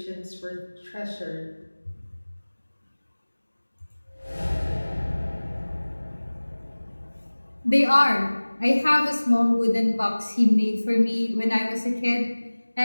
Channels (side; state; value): both; inverted; correlation -1.00